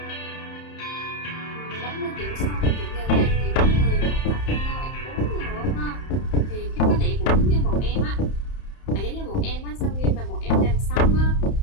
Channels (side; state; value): right; late; 31 ms